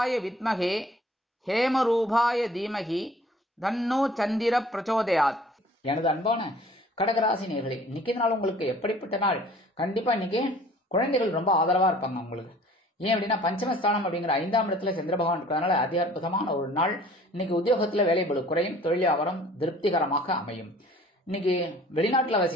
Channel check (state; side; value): normal; both; correlation 0.52